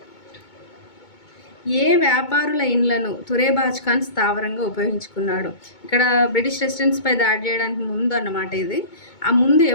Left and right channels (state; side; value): late; right; 2.2 ms